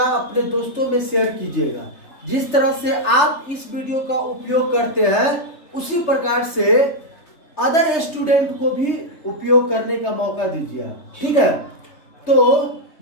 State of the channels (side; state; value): right; late; 3.3 ms